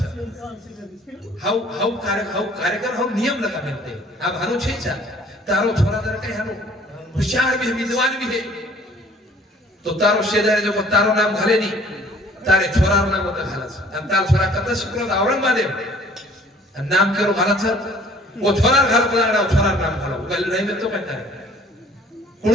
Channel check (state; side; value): normal; both; correlation 0.55